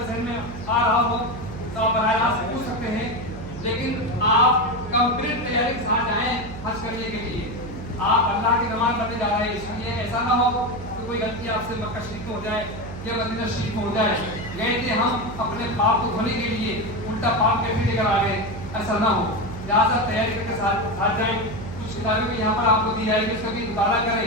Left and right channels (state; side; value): noise; right; hum, 11 dB below the sound